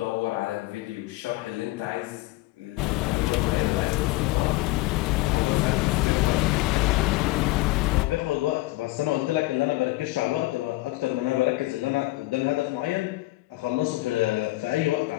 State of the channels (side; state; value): right; quieter; 19.5 dB